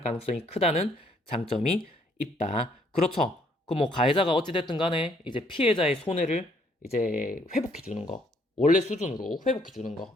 가능성이 크다는 장점이 있다. 그렇죠. 그 뭐 가해자가 어찌됐든 간에 이제 피해자의 손해를 이제 회복해 주는 거. 원래 수준으로 회복해 주는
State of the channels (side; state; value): both; normal; correlation 0.66